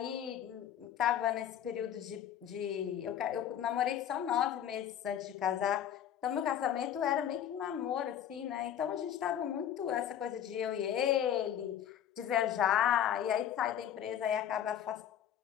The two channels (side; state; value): right; quieter; 10.0 dB